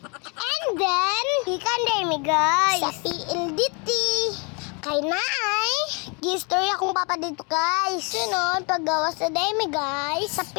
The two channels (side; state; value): right; quieter; 33.4 dB